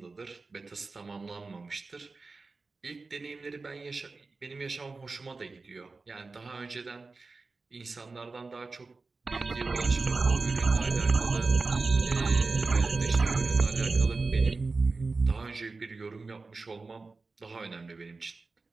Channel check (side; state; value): left; quieter; 3.9 dB